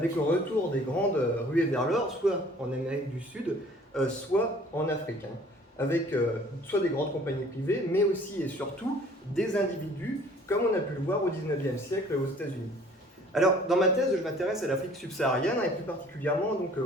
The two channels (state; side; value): normal; both; correlation 0.53